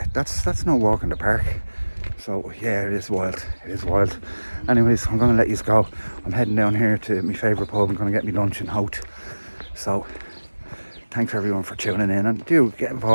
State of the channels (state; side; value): inverted; both; correlation -1.00